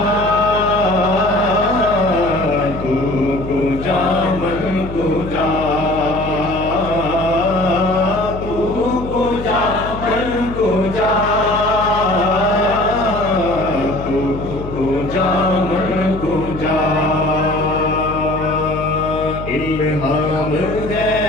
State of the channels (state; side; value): noise; left; hum, 9 dB below the sound